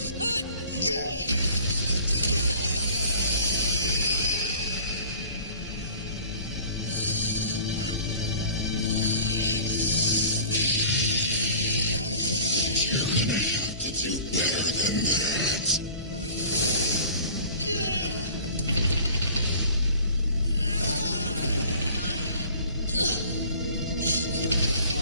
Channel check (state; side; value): inverted; both; correlation -0.46